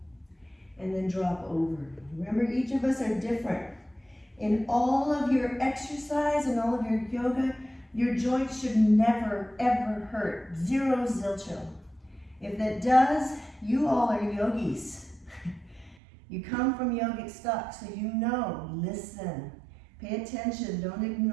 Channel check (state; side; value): drops out; left; at 16.0 s